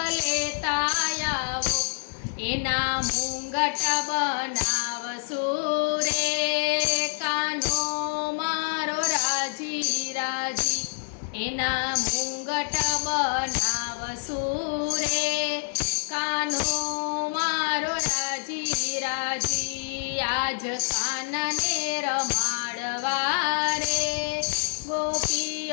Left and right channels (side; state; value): right; silent; digital silence